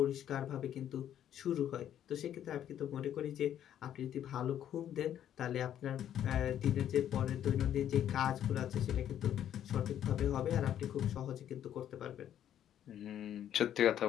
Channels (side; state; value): right; quieter; 10.5 dB